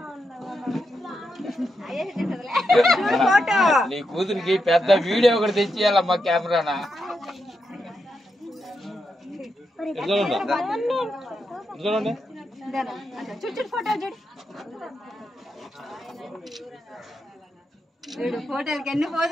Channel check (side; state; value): both; normal; correlation 0.85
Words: ఫోటో నీ కూతురికి పెద్ద వీడియో ఒకటి తెచ్చియాలమ్మా కెమెరానా చూడు ఫోటో చూడు చూడు ఫోటోలకి ఎన్ని